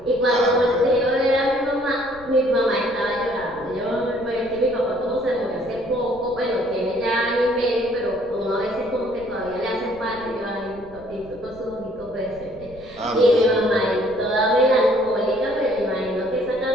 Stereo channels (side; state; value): left; noise; rumble, 22 dB below the sound